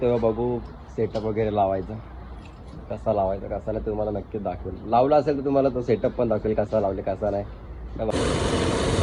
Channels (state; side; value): identical; both; correlation 1.00